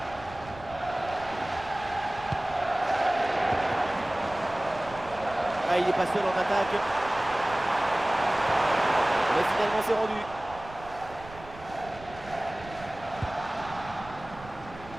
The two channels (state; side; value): noise; right; rumble, 17 dB below the sound